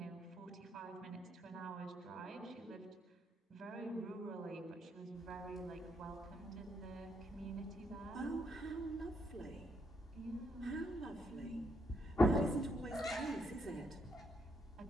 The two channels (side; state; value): both; normal; correlation 0.76